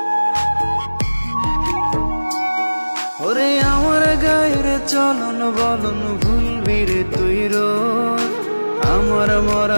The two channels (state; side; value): inverted; both; correlation -1.00